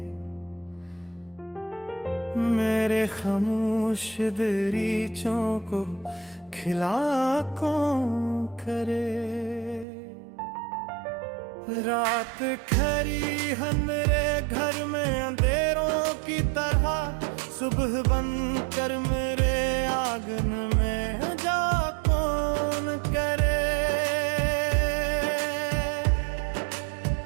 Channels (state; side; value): drops out; left; at 9.9 s